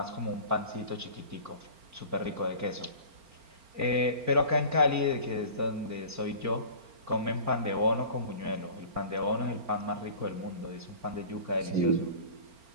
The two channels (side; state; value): left; late; 4.4 ms